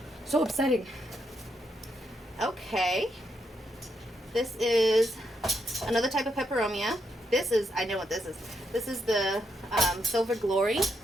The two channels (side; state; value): both; normal; correlation 0.80